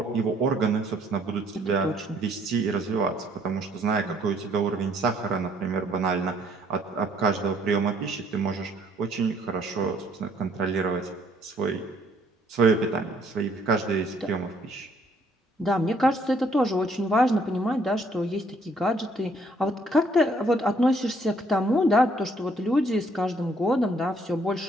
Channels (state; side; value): normal; both; correlation 0.65